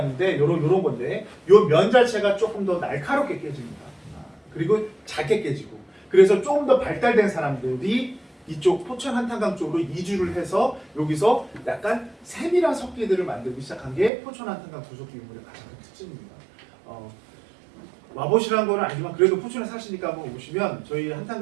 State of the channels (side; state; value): left; drops out; at 14.1 s